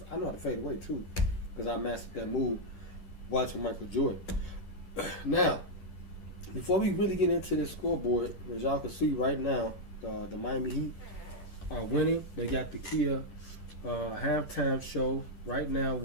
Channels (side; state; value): right; late; 10 ms